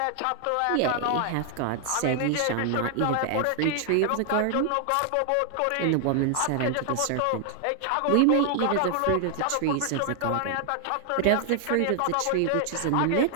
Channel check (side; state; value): both; different; correlation 0.00